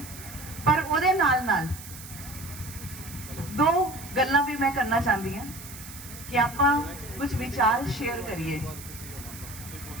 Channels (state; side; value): noise; right; hiss, 14 dB below the sound